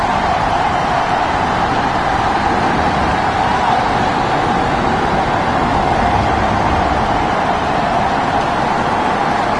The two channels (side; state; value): both; identical; correlation 1.00